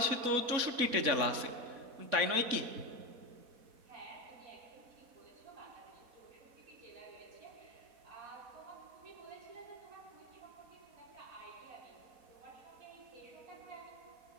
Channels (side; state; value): left; late; 4.1 ms